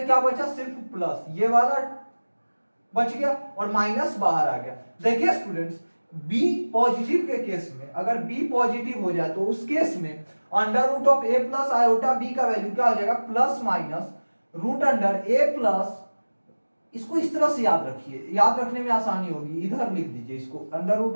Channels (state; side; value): inverted; both; correlation -1.00